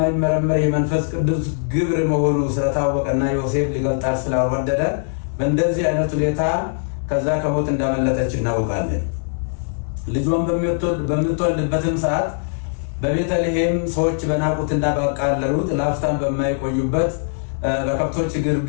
የመንፈስ ቅዱስ ግብር መሆኑ ስለታወቀና ዮሴፍ ሊገልጣት ስላልወደደ በእንደዚህ አይነት ሁኔታ ከዛ ከሞት እንዳመለጠች እናውቃለን። ልጇን በምትወልድበትም ሰዓት በቤተልሔም ሰዎች በናቁትና ባቃለሉት ለአፍታም በማይቆዩበት በከብቶች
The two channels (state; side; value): silent; right; digital silence